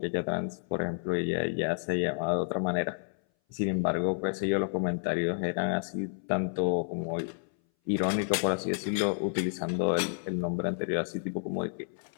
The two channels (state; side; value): silent; right; 58 dB below the other